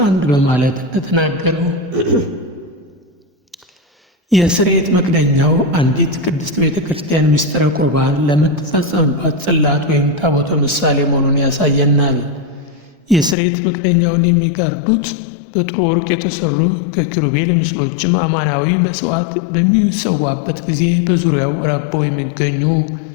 በማለት እንደተናገረው የስርየት መክደኛው አንዲት ቅድስት ቤተ ክርስቲያን ምስጢረ ቁርባን ለምትፈጸምባት ጽላት ወይም ታቦተ ምሳሌ መሆኑን ያሳየናል። የስርየት መክደኛውን የሚጋርዱት በጥሩ ወርቅ የተሰሩ ከኪሩቤል ምስሎችም አማናዊ መሥዋዕት በሚሰዋበት ጊዜ በዙሪያው ረበው የሚገኙ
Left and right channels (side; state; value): right; drops out; at 13.4 s